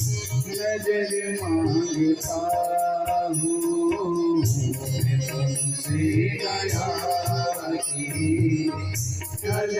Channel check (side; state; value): both; identical; correlation 1.00